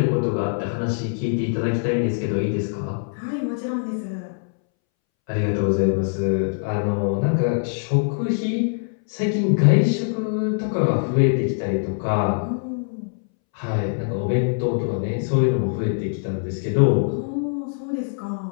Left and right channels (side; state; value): right; silent; 63 dB below the other